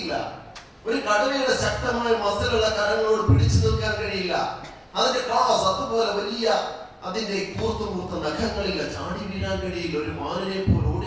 ഒരു കടുവയുടെ ശക്തമായ മസിലുള്ള കരങ്ങളോട് പിടിച്ചു നിൽക്കാൻ കഴിയില്ല. അതിന്റെ ക്ലാസ് അതുപോലെ വലിയ അതിന്റെ കൂർത്ത നഖങ്ങളില്ല, ചാടി വീഴാൻ കഴിയില്ല, ഒരു മാനിനെ പോലെ ഓടി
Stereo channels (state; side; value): identical; both; correlation 1.00